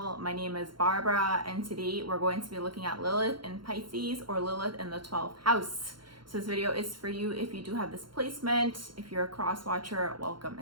My name is Barbara, and today we're going to be looking at Lilith in Pisces, or Lilith in the 12th house. So this video is for you if you do have this placement. If you're a cross watcher, welcome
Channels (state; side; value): late; left; 0.72 ms